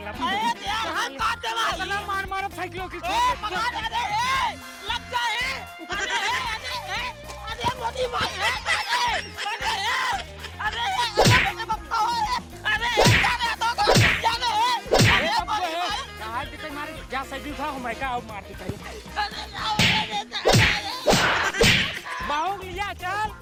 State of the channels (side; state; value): both; identical; correlation 1.00